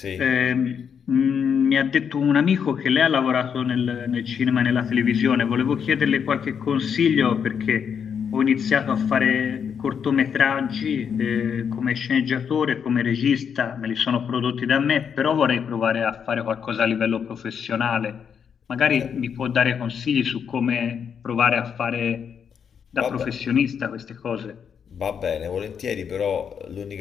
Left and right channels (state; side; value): quieter; right; 7.3 dB